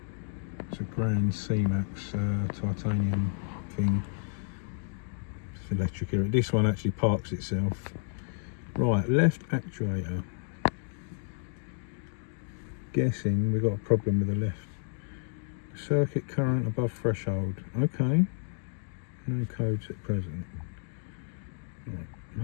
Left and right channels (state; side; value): silent; right; 56 dB below the other